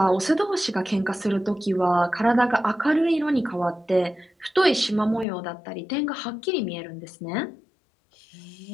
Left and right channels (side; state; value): right; drops out; at 5.2 s